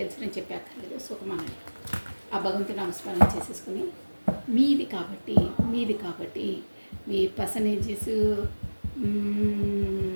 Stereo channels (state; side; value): inverted; both; correlation -1.00